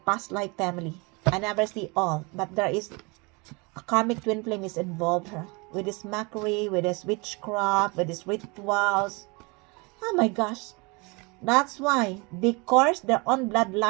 life family. I never see all. But there is a karmic twin flame is involved here. With this mockery, with this witchcraft, with these rituals. Oh my gosh. That's why they curse their own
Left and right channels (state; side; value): quieter; left; 28.3 dB